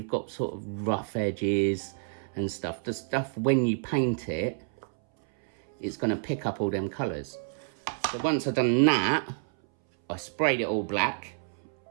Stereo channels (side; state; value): left; silent; 59 dB below the other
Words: got sort of rough edges and stuff. The stuff, when you paint it, it's going to pick up all them colours. So once I've done that, I sprayed it all black